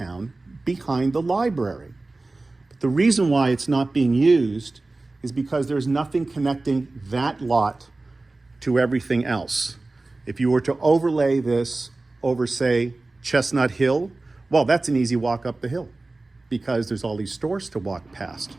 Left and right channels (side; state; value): left; quieter; 3.2 dB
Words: behind the library. But the reason why it's not being used is because there's nothing connecting that lot to everything else. If you were to overlay this over, say, Chestnut Hill, well, that's an easy walk up the hill because there's all these stores to walk past.